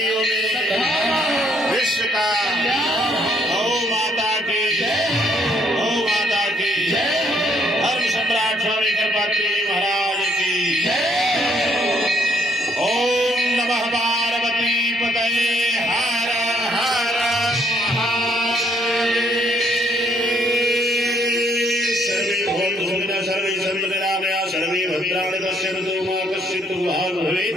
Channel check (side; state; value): both; normal; correlation 0.68